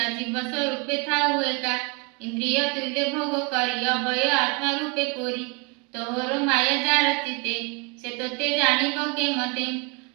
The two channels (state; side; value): quieter; left; 30.6 dB